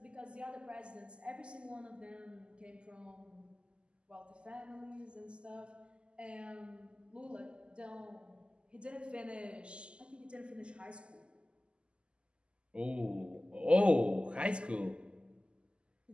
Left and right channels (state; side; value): late; left; 0.052 ms